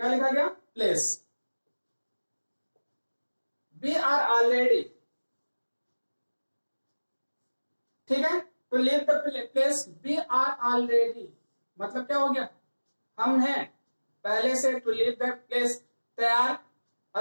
लिखा गया, प्लेस। वी आर ऑलरेडी, ठीक है, तो leave the place, we are already मतलब क्या हो गया, हम हैं पहले से, टू लीव द प्लेस, तैयार,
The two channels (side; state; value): both; inverted; correlation -1.00